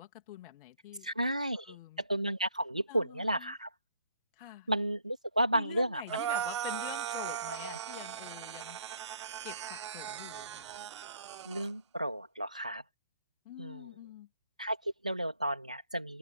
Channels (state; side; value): inverted; both; correlation -0.65